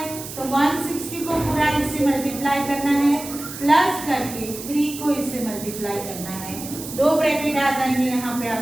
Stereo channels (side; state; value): right; noise; hiss, 11 dB below the sound